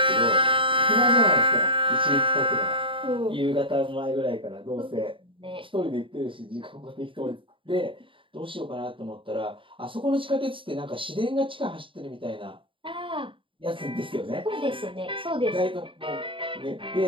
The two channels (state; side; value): late; left; 0.25 ms